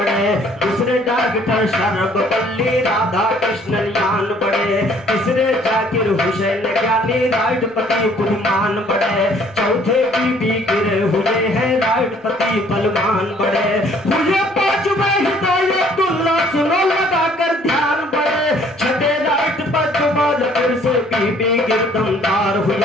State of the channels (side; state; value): both; normal; correlation 0.59